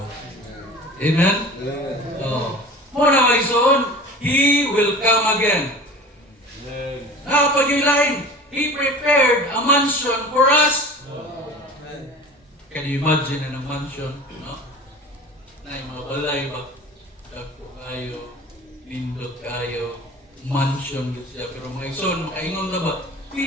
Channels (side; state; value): both; normal; correlation 0.38